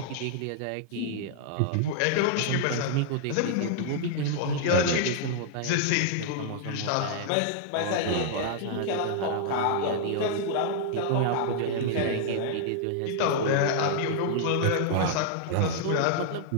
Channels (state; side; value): different; both; correlation -0.01